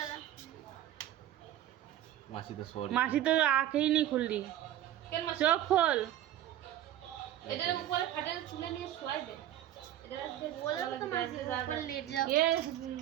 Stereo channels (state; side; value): quieter; left; 12.5 dB